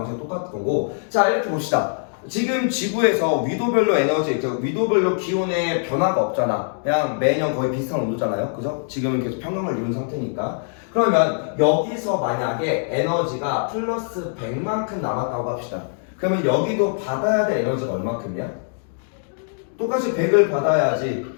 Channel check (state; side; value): silent; right; digital silence